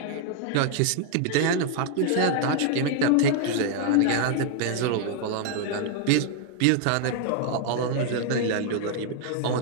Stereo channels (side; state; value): both; different; correlation 0.00